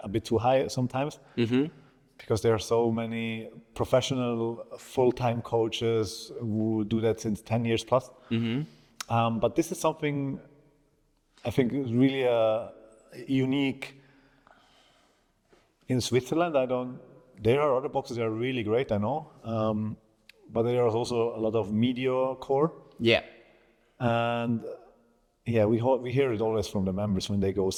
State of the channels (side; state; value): both; identical; correlation 1.00